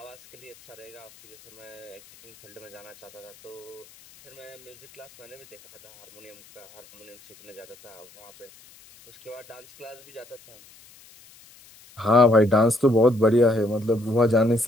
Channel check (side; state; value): left; noise; hiss, 24 dB below the sound